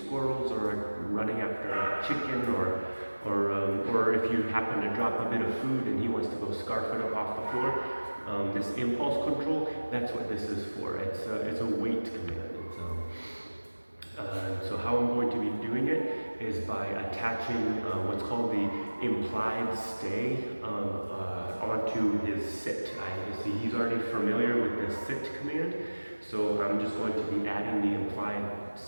squirrels or running after a chicken, or if you happen to drop a bit of food and he wants to go scarf it up off the floor. This impulse control, that's what this is for. It's a wait command. So how I'm going to be doing it is by attaching what's called the implied stay onto his sit. I see he's already familiar with the sit command, so I'm just going to be adding the implied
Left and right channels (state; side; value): inverted; both; correlation -1.00